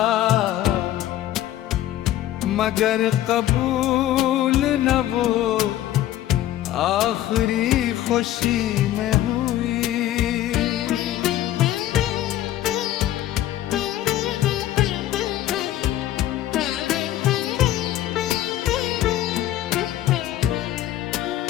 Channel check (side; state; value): right; quieter; 13.3 dB